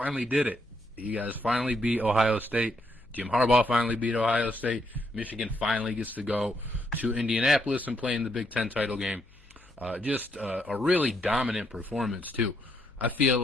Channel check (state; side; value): noise; left; hum, 28 dB below the sound